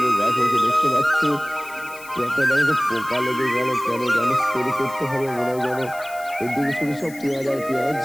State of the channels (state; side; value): noise; left; hiss, 19 dB below the sound